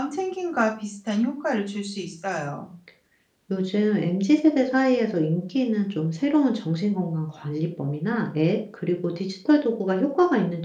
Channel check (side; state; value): both; identical; correlation 1.00